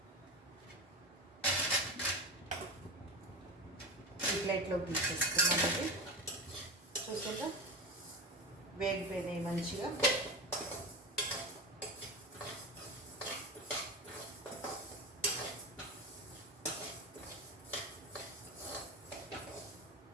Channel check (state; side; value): normal; both; correlation 0.23